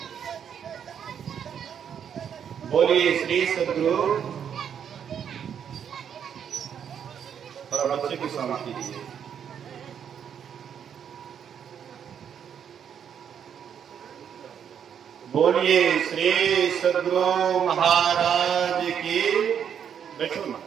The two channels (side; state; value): left; quieter; 8.3 dB